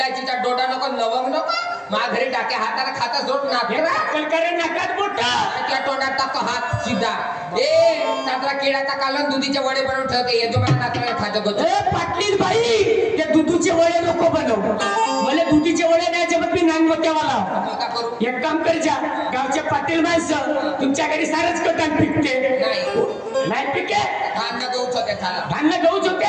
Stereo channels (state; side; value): identical; both; correlation 1.00